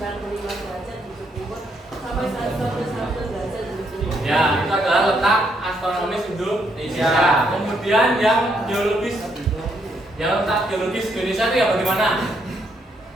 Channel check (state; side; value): normal; both; correlation 0.74